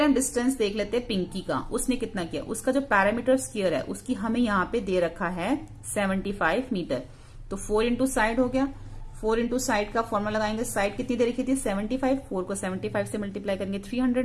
हम डिस्टेंस देख लेते हैं पिंकी का, उसने कितना किया। उसका जो पैरामीटर स्क्वायर है उसकी हमें यहाँ पे दे रखा है 75 मीटर। तो 4 इंटू साइड हो गया। 4 इंटू साइड का फॉर्मूला लगाएंगे, साइड कितनी दे रखी थी 75, 4 को 75 से मल्टीप्लाई करेंगे 300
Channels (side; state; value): both; identical; correlation 1.00